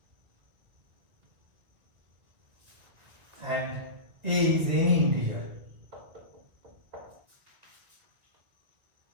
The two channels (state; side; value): late; left; 2.1 ms